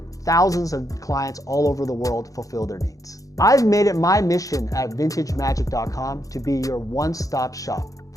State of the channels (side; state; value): right; late; 0.17 ms